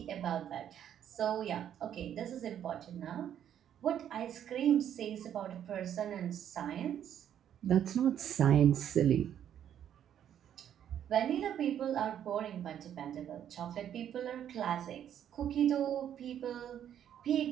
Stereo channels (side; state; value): left; quieter; 9.9 dB